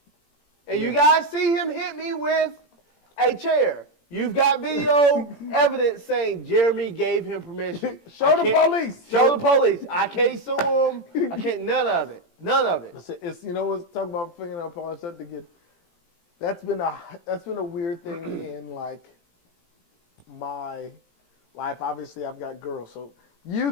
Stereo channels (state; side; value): late; right; 17 ms